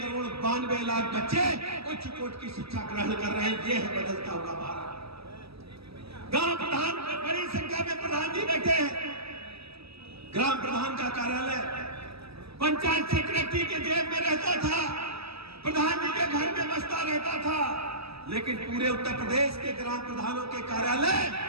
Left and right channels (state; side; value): late; left; 0.77 ms